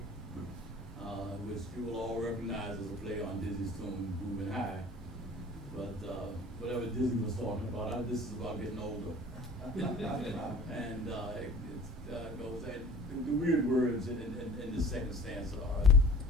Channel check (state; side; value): normal; both; correlation 0.46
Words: which you will all recognize as a play on Dizzy's tune "Groovin' High." But whatever Dizzy was talking about, this is about getting older, and goes, and the weird words in the second stanza are